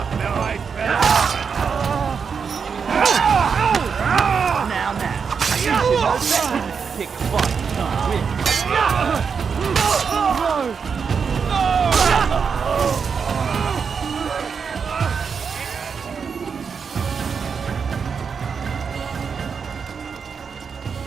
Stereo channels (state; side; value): quieter; left; 6.0 dB